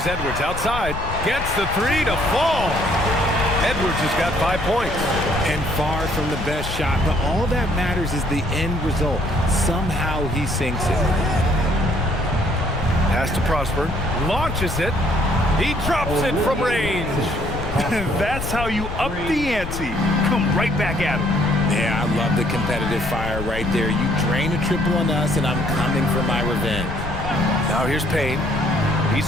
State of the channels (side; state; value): left; noise; rumble, 8 dB below the sound